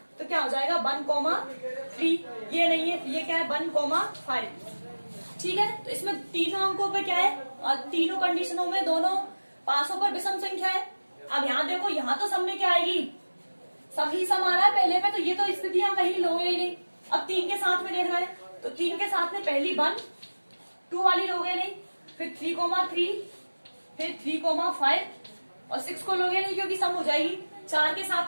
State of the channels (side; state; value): both; inverted; correlation -1.00